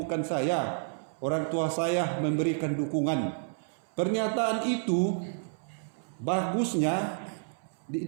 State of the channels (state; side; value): silent; left; 58 dB below the other